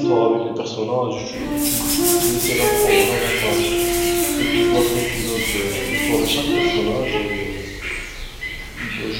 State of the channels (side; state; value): both; identical; correlation 1.00